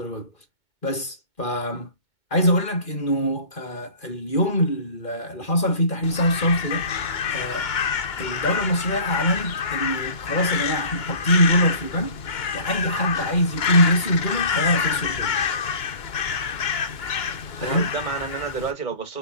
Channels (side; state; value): right; late; 2.2 ms